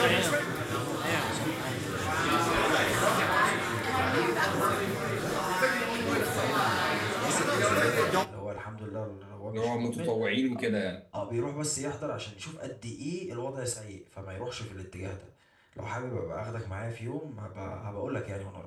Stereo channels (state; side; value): identical; both; correlation 1.00